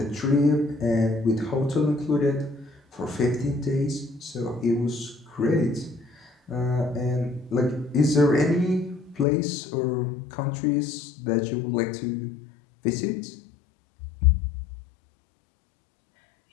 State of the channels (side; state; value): right; drops out; at 9.2 s